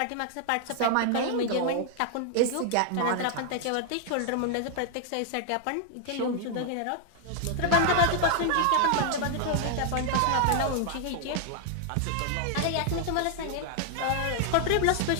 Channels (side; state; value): both; different; correlation 0.00